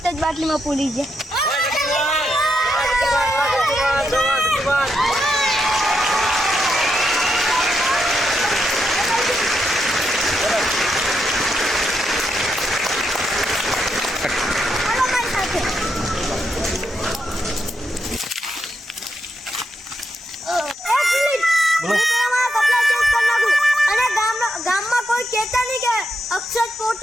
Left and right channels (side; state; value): both; normal; correlation 0.82